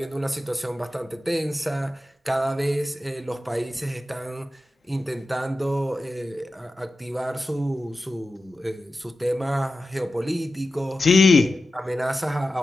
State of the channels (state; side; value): normal; both; correlation 0.93